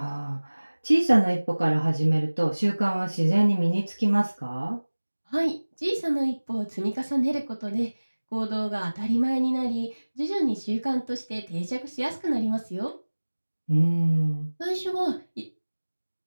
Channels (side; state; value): both; inverted; correlation -1.00